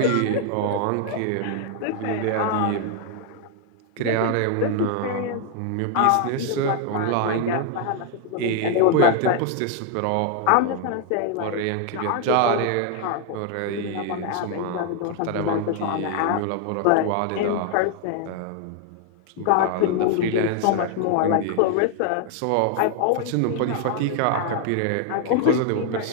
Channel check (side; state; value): both; different; correlation 0.00